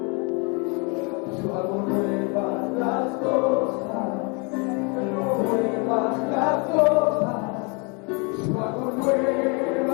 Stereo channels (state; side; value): quieter; right; 31.5 dB